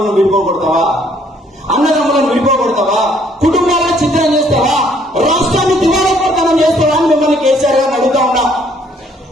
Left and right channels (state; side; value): normal; both; correlation 0.64